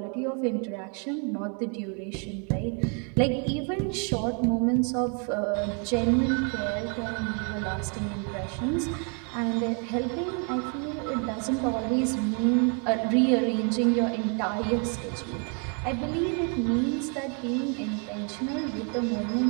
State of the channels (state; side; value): quieter; left; 38.5 dB